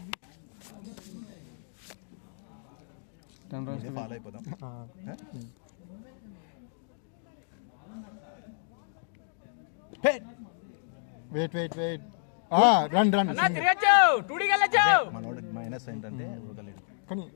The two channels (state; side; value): silent; right; digital silence